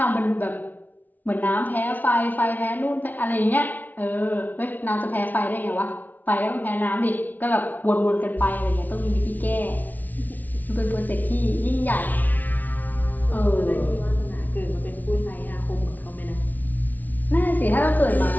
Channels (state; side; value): late; right; 0.080 ms